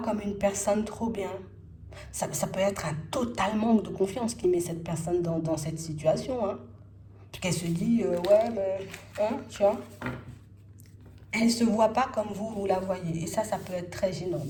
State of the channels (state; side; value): identical; both; correlation 1.00